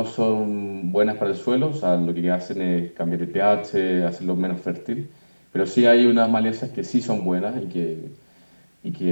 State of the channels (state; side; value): inverted; both; correlation -1.00